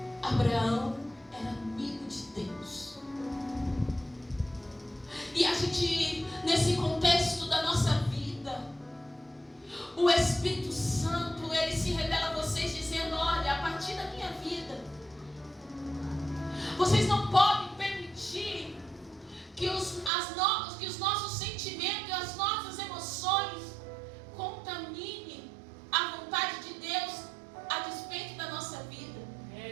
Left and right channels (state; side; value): drops out; left; at 20.1 s